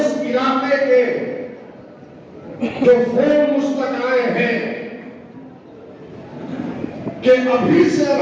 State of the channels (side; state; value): both; identical; correlation 1.00